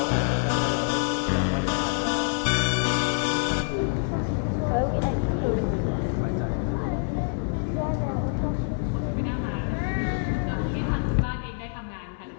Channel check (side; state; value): right; silent; 61 dB below the other